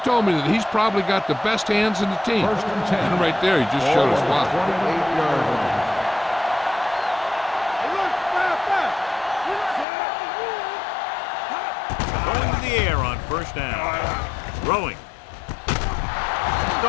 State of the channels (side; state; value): right; drops out; at 9.9 s